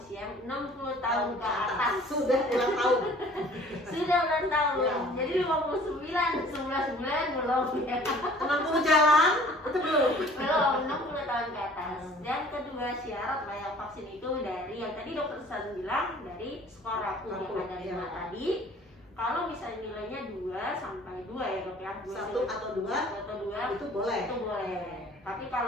60 tahun ke atas. Sudah ulang tahun. Sudah ulang tahun. Ya. Jadi 59 bulan belum ya. 60 jalan itu belum. Belum 60 tahun ke atas. Dan kedua syarat layak vaksin itu dari yang tadi dokter San bilang dari skor rapuh yang ada 5 tadi. Kalau misalnya nilainya 2 sampai 2 ya dok ya, 1 atau 2 itu boleh. Itu boleh. Tapi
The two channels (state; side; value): normal; both; correlation 0.51